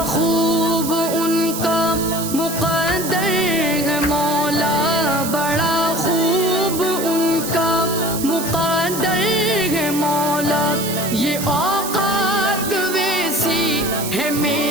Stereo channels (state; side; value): noise; right; hiss, 7 dB below the sound